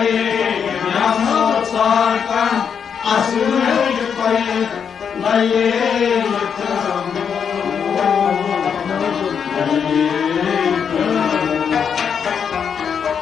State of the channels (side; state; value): right; quieter; 7.1 dB